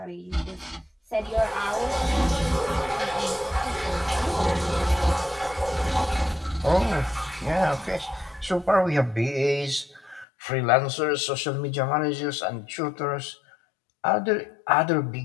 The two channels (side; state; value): right; drops out; at 10.2 s